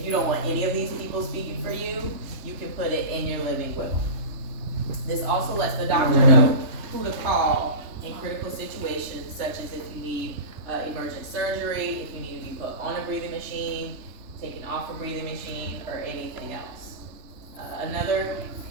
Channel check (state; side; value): late; left; 3.3 ms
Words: you don't want any of these people speaking for you, you can put it in your living will. This also lets the doctor know who to call in critical situations, such as if you need emergent surgery, if you need to be put on a breathing machine, taken off a breathing machine, or anything else. Another